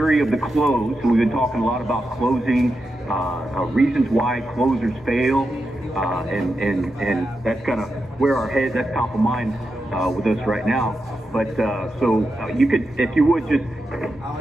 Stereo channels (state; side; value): normal; both; correlation 0.88